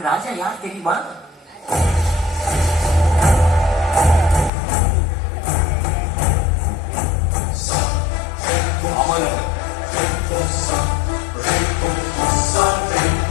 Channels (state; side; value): drops out; right; at 4.5 s